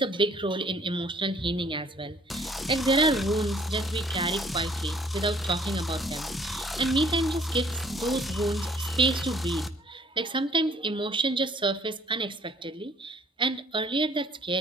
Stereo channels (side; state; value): both; normal; correlation 0.58